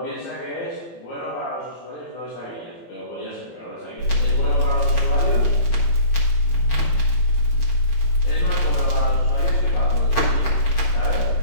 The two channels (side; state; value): right; late; 18 ms